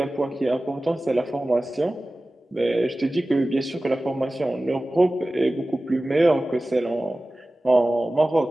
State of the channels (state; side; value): normal; both; correlation 0.97